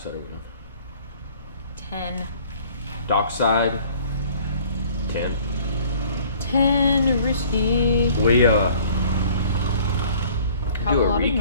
are we on? 10. Dockside 10. 10 risky. We do a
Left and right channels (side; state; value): both; inverted; correlation -0.53